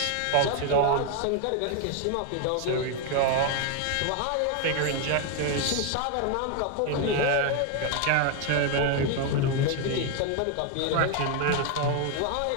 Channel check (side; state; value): both; different; correlation 0.01